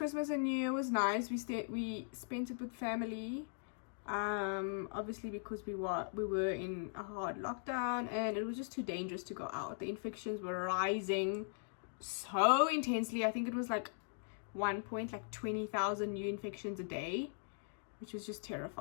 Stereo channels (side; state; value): right; silent; digital silence